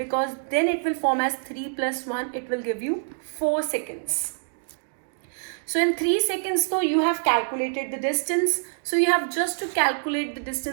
then it will form as 3 plus 1, it will give you 4 seconds. So in 3 seconds though you have calculated the distance. So you have just to calculate the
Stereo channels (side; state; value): left; silent; digital silence